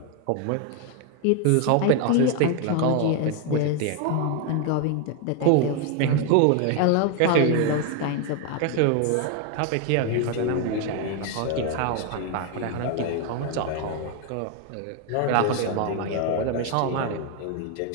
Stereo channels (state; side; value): different; both; correlation 0.01